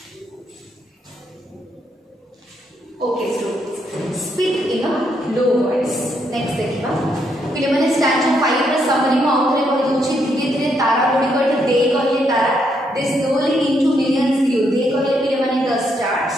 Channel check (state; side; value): normal; both; correlation 0.76